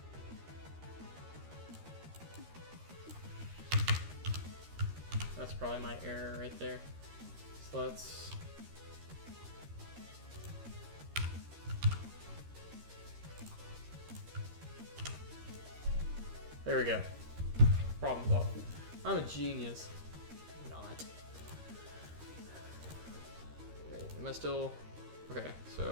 That's probably my error right there. So let's... There we go. Problem solved. I'm a genius. Not. Wait, am I still... Okay,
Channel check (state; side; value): late; left; 13 ms